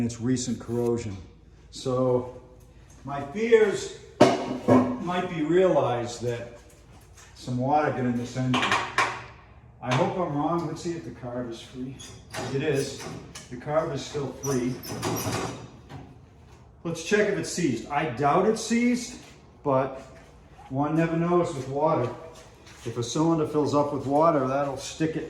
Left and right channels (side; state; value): both; identical; correlation 1.00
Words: it's recent corrosion. So my fears might be realized that some water got in this engine. I hope I'm wrong. Let's see if the carb is free. It is. The carb is still free. Let's check if it's seized. I doubt it's seized, but one never knows with water. If a cylinder fills up with water, that'll stick